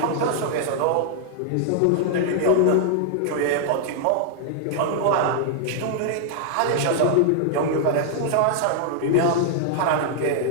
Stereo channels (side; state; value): both; different; correlation 0.00